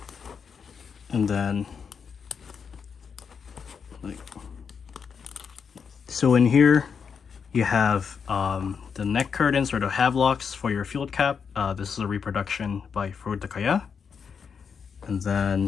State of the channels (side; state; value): right; quieter; 6.3 dB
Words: And then, so in here, you have the neck curtains or the havelocks for your field cap. This is a reproduction by Furutakaya. And